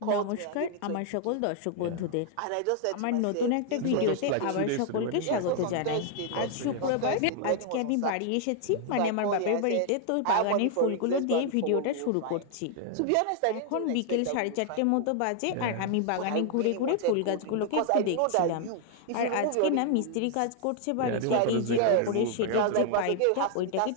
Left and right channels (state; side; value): different; both; correlation 0.00